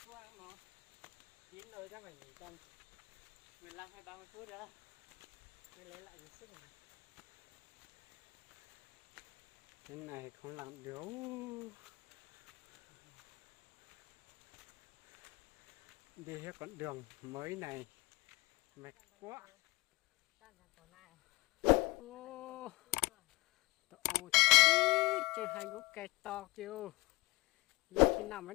khoang nó chín rồi chắc phải nghỉ tầm 15 hay 30 phút nữa mới lấy lại được sức này. Cái này không làm được. Đi hết con đường mới này mệt quá. Ô, ô chứ hai gốc cây to kêu lúc khi nào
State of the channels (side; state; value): right; quieter; 22.0 dB